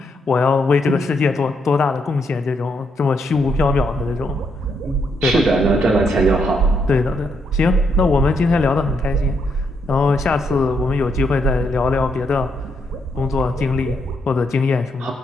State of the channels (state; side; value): normal; both; correlation 0.77